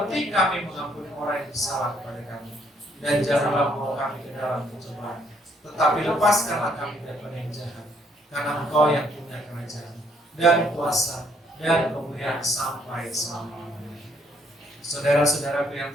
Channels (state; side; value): normal; both; correlation 0.68